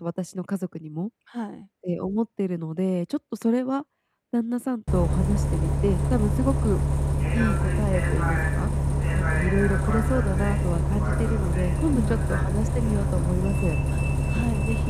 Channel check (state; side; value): identical; both; correlation 1.00